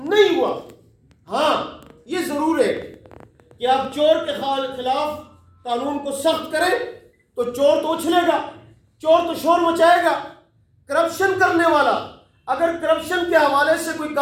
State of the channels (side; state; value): both; identical; correlation 1.00